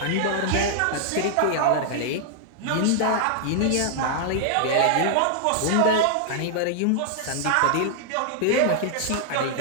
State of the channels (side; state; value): both; different; correlation 0.00